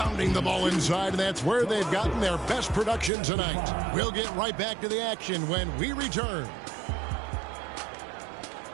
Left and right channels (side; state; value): left; drops out; at 3.1 s